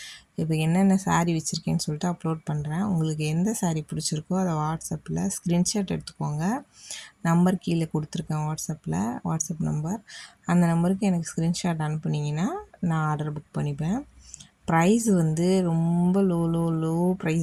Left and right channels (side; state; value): both; identical; correlation 1.00